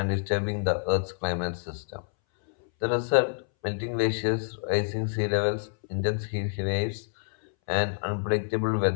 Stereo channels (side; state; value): right; silent; 60 dB below the other